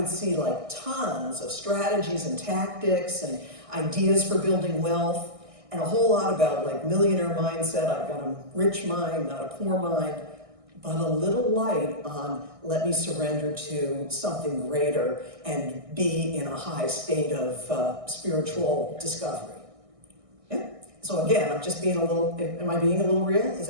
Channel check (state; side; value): late; left; 1.6 ms